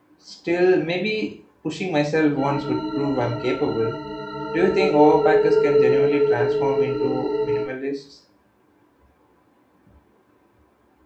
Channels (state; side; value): identical; both; correlation 1.00